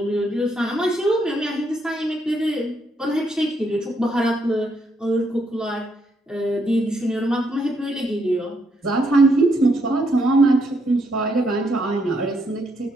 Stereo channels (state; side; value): normal; both; correlation 0.75